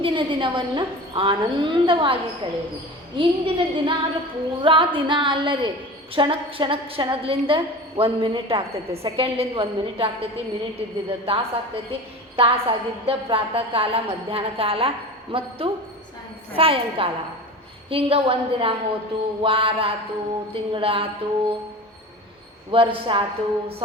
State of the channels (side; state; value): both; normal; correlation 0.33